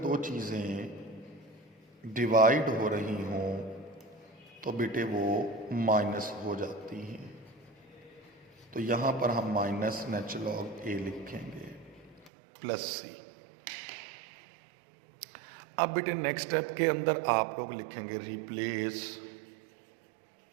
चीज़ें डिवाइड हो रही हों तो बेटे वो माइनस हो जाती हैं। तो यहाँ पर हम माइनस नेचुरल लॉग ए लिखेंगे प्लस सी। अब बेटे नेक्स्ट स्टेप के अंदर आप लोग लिखेंगे replace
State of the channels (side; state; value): left; drops out; at 12.3 s